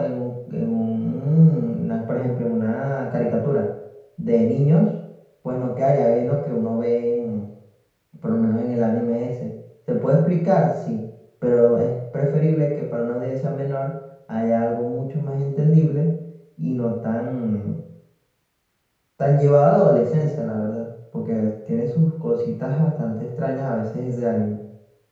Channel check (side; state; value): both; identical; correlation 1.00